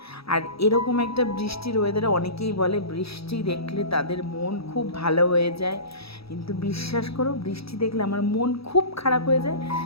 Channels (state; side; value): late; right; 0.77 ms